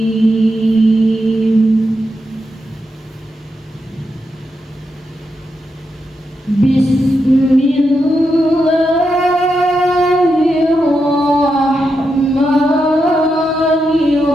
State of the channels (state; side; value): normal; both; correlation 0.85